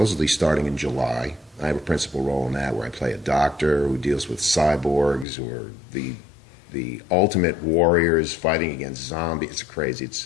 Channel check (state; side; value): drops out; right; at 5.2 s